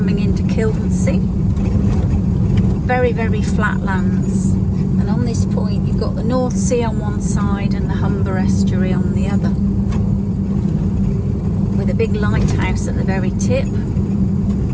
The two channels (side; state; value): both; identical; correlation 1.00